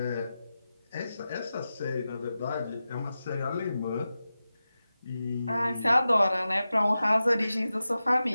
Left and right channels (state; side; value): inverted; both; correlation -0.93